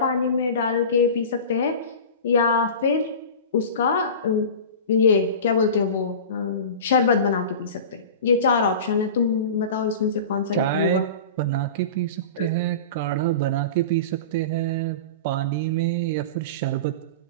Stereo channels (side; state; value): both; inverted; correlation -0.32